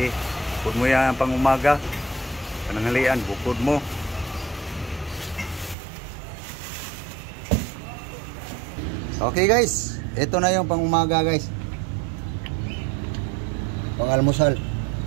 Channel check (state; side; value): drops out; left; at 5.8 s